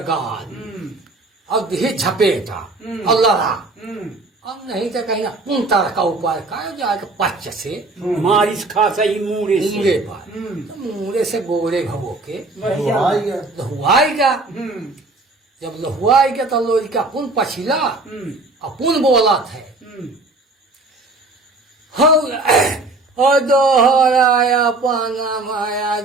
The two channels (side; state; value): left; quieter; 3.1 dB